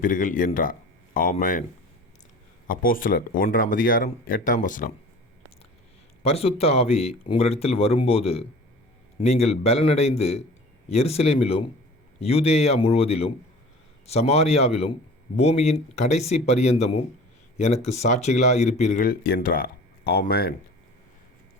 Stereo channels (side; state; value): both; normal; correlation 0.42